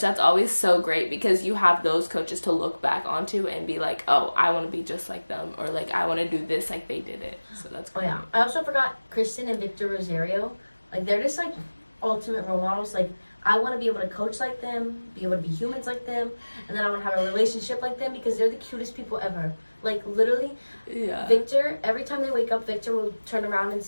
that's always so great, because you have those coaches to look back onto and be like, oh, I want to be just like them, or like I want to do this like they did it. So that's cool. I also forgot Kristen and Victor Rosario. Like they're just like ultimate role models. Like I want to be able to coach like them, be able to be humans like them, and then I want to have a relationship like them, because they're the cutest people ever. Like literally, Victor, every time they wake up, Victor will turn around and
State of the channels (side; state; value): both; inverted; correlation -1.00